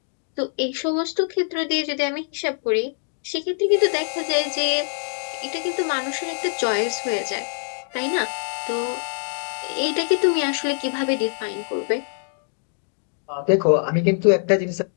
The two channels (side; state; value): right; silent; digital silence